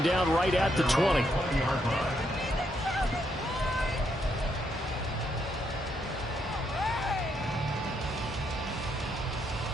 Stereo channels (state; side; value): normal; both; correlation 0.77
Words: down right at the 20.